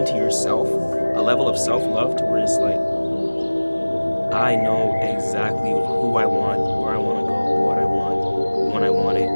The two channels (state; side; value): inverted; both; correlation -1.00